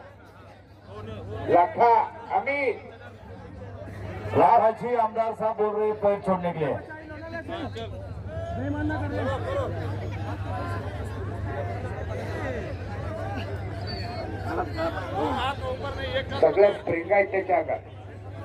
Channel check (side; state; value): both; identical; correlation 1.00